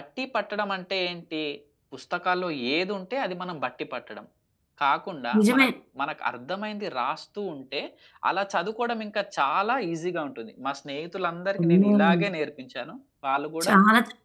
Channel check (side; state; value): both; identical; correlation 1.00